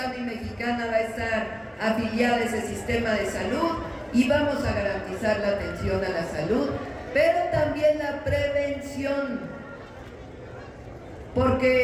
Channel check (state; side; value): identical; both; correlation 1.00